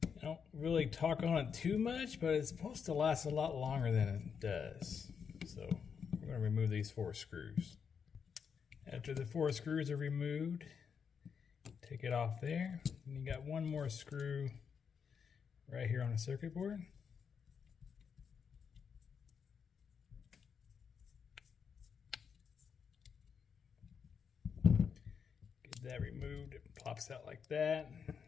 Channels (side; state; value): right; quieter; 6.7 dB